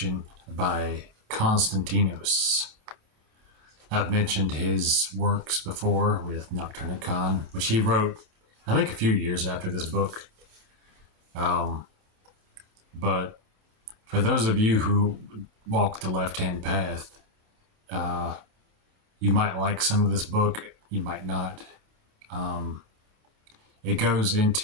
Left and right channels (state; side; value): late; left; 27 ms